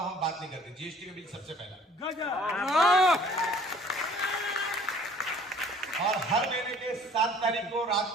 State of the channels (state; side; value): normal; both; correlation 0.53